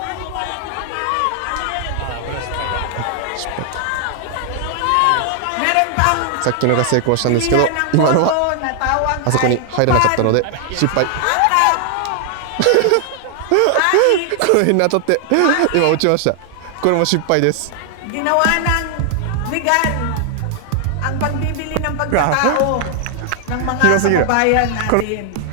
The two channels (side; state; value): both; different; correlation 0.00